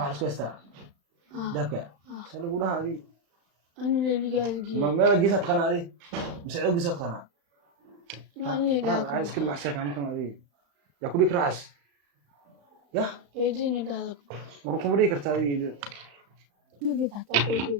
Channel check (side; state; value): left; late; 35 ms